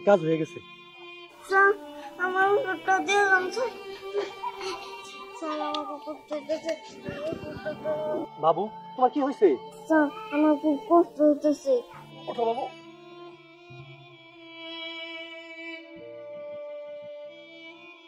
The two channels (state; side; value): identical; both; correlation 1.00